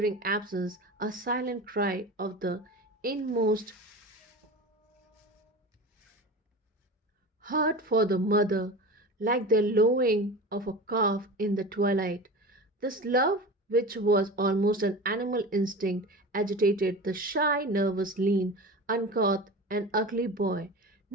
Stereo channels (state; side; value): normal; both; correlation 0.32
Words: absence, a silent cry of the inmost heart for the mother, like the lowing of a calf in the twilight. This love, which was almost an animal instinct, agitated the shy, nervous, lean, uncouth, and ugly boy.